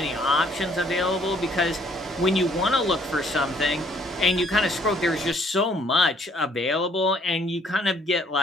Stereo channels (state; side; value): normal; both; correlation 0.63